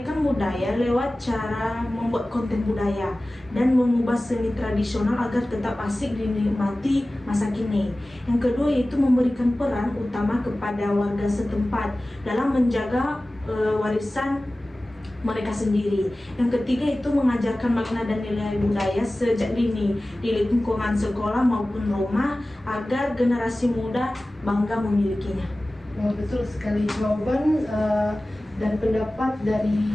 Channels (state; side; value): normal; both; correlation 0.97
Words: budaya lewat cara membuat konten budaya dan mengubah seni tradisional agar tetap asik dinikmati masa kini. Yang kedua, yaitu memberikan peran utama kepada warga setempat dalam menjaga warisan mereka sendiri. Yang ketiga, itu mengajarkan makna dan nilai budaya sejak dini di lingkungan sekolah maupun rumah agar generasi muda bangga memilikinya. Nah, betul sekali, jawaban dan pendapat